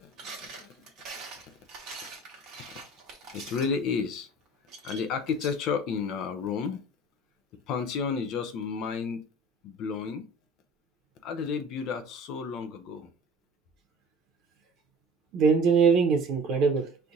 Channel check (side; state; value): both; normal; correlation 0.43